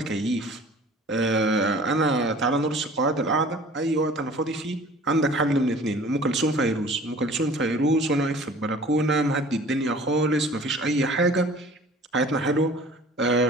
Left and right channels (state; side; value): normal; both; correlation 0.47